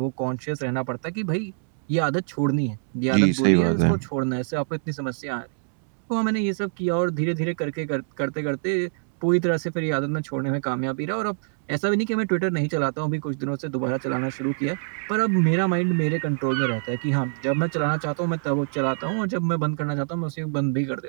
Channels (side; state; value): left; silent; 62 dB below the other